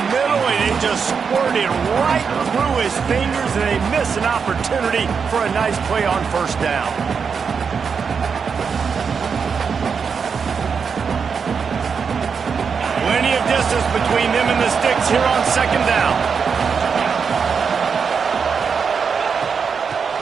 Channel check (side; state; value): left; quieter; 6.0 dB